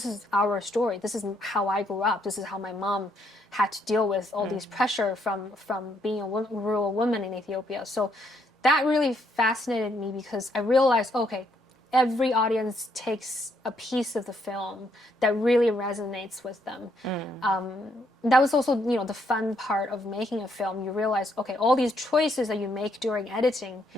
is our story. This is how I grew up. This is how my mom had to deal with all these pressure from being a rural woman in Ethiopia." So that really fascinated me because I realized, okay, every audience takes a piece of the film that really resonates with them. That was also, the fun part of making a film. You realize, okay, all these choices that you make during editing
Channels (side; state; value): both; normal; correlation 0.73